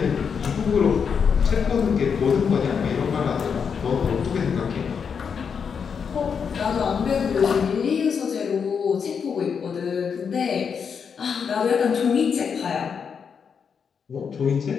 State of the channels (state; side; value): quieter; right; 6.5 dB